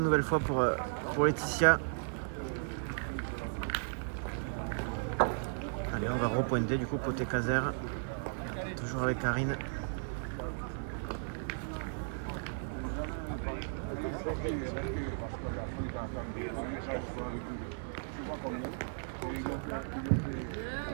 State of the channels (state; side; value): silent; left; digital silence